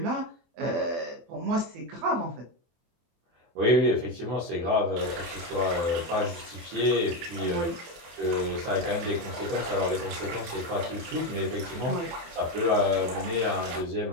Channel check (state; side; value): late; left; 24 ms